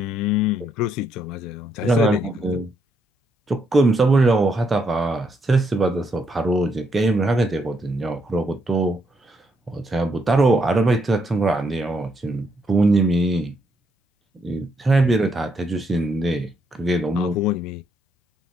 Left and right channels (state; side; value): normal; both; correlation 0.76